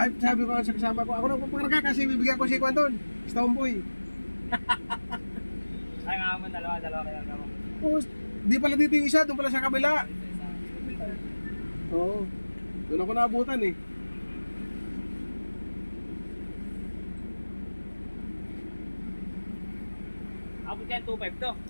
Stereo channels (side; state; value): both; inverted; correlation -1.00